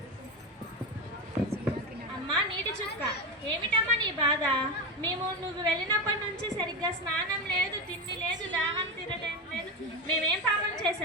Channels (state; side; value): normal; both; correlation 0.16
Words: అమ్మా నీటి చుక్క, ఏమిటమ్మా నీ బాధ? మేము నువ్వు వెళ్ళినప్పటి నుంచి సరిగ్గా స్నానం లేదు, తిండి లేదు, దాహం తీరడం లేదు. మేమేం పాపం